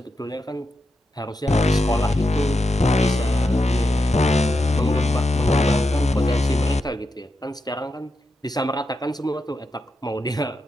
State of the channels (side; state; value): both; normal; correlation 0.87